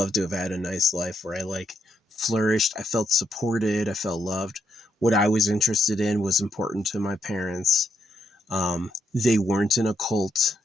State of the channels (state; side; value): normal; both; correlation 0.78